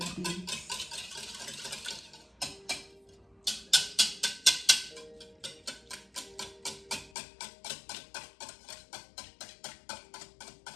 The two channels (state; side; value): drops out; right; at 7.1 s